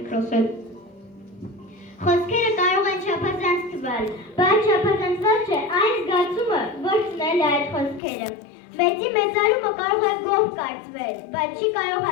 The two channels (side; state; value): right; drops out; at 8.0 s